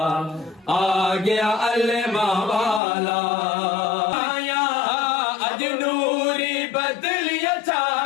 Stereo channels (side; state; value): right; drops out; at 2.8 s